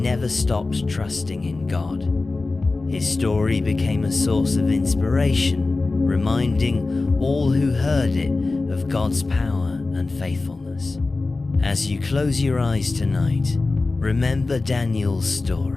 stopped trusting in God. His story became a source of inspiration, reminding all who heard it of God's power and faithfulness. As you close your eyes tonight, remember Daniel's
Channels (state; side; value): quieter; right; 3.5 dB